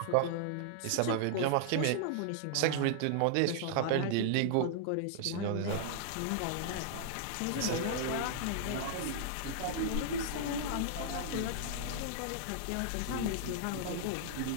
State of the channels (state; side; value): different; both; correlation -0.01